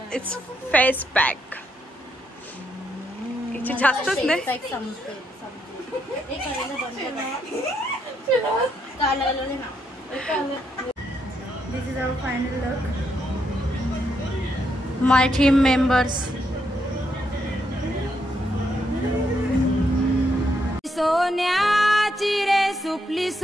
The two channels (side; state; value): both; normal; correlation 0.77